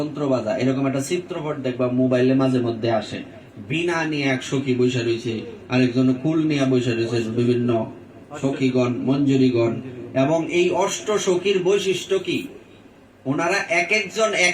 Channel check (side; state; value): both; identical; correlation 1.00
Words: বাজায়। এরকম একটা চিত্রপট দেখবা মোবাইলে মাঝে মধ্যে আসে, বিনা নিয়ে এক সখী বৈশা রয়েছে, আরেকজন কুল নিয়ে বৈশা রয়েছে, বিভিন্ন সখীগণ মঞ্জুরিগণ। এবং এই অষ্ট সখীর বৈশিষ্ট্য কি? ওনারা এক একজন